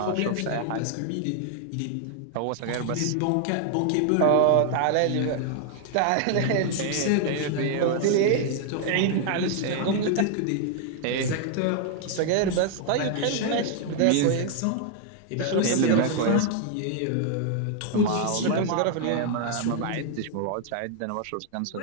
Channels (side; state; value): both; different; correlation 0.00